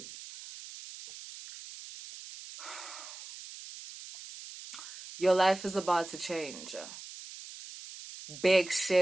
Your life is about to change. Big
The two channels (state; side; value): noise; right; hiss, 14 dB below the sound